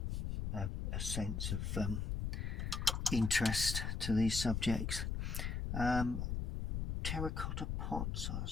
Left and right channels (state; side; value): noise; left; rumble, 1 dB below the sound